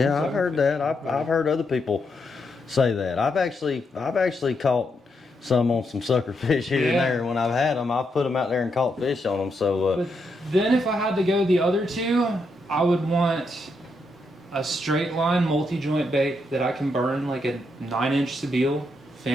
I've heard that. I've heard other people say that. I've actually caught some on some suckerfish here and there. When I've had them, I've put them out there and caught fish on them. So. But then if I had to go the other two, I would want a straight line multi-joint bait that I can burn, like a 9-inch Sebile.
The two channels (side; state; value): both; normal; correlation 0.80